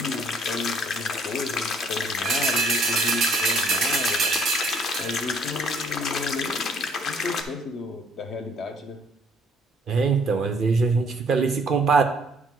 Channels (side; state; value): both; normal; correlation 0.62